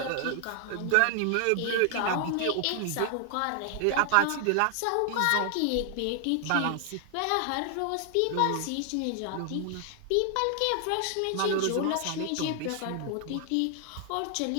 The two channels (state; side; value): different; both; correlation 0.00